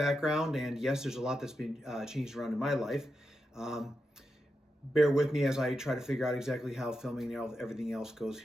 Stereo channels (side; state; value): both; normal; correlation 0.87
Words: and yes, there's a lot that's been changed around in my life. Bear with me as I try to figure out exactly how filming and everything else goes